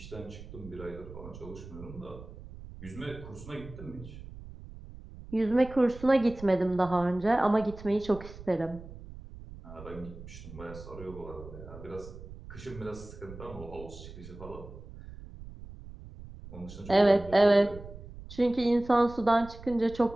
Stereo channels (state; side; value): noise; right; rumble, 15 dB below the sound